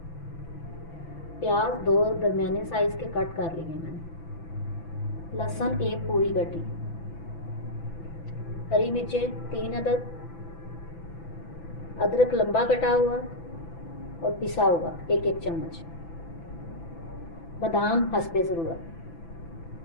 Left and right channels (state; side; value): late; right; 6.0 ms